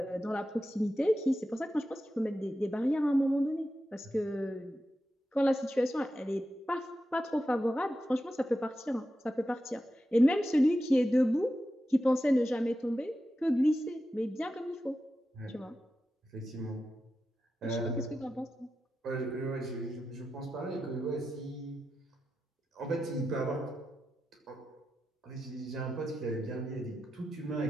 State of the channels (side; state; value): both; normal; correlation 0.90